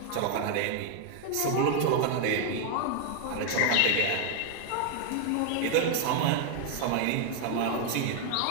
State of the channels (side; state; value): both; different; correlation 0.00